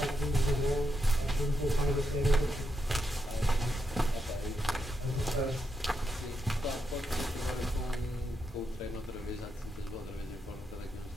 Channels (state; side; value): normal; both; correlation 0.83